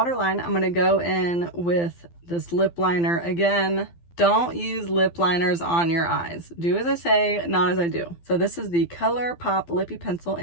I'm gonna go in with this lip liner again. Don't use lip liners on your eyes. Do as I say, not as I do. So this is the ColourPop Lippy Pencil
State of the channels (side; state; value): right; late; 12 ms